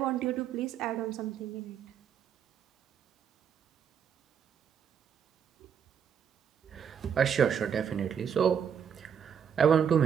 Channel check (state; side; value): quieter; left; 7.8 dB